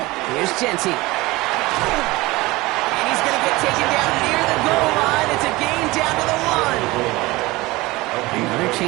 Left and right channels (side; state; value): left; quieter; 20.9 dB